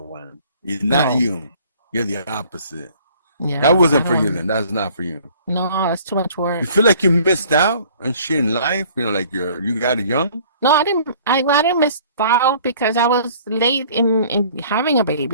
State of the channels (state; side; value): inverted; both; correlation -0.54